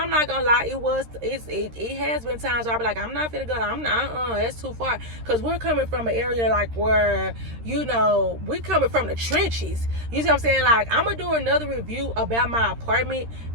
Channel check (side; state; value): left; late; 13 ms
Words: not gonna lie, it has been times where I be like, I'm not gonna go, I'm not, that's too far. Because we're coming from an area like where, you know, we coming from the trenches. You see what I'm saying? Like, I'm gonna do another review about my apartment